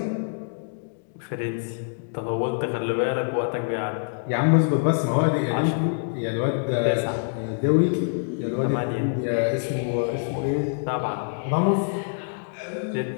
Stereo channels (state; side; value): silent; right; digital silence